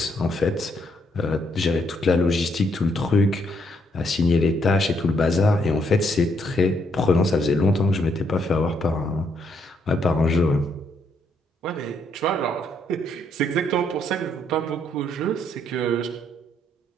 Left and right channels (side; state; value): both; normal; correlation 0.73